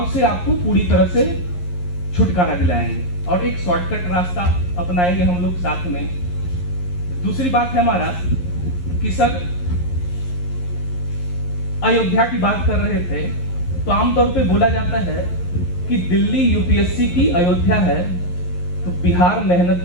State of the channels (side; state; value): right; late; 11 ms